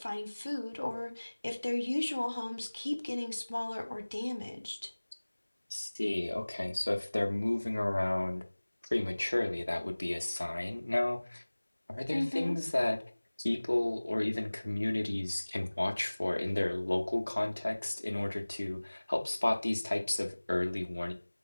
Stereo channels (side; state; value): both; inverted; correlation -1.00